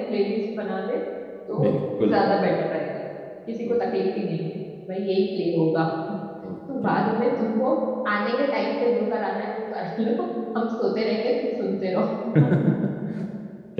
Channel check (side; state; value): both; identical; correlation 1.00